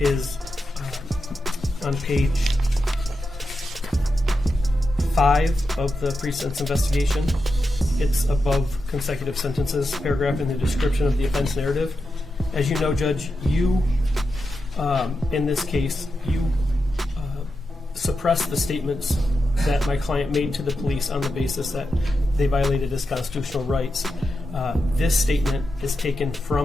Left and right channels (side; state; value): both; normal; correlation 0.88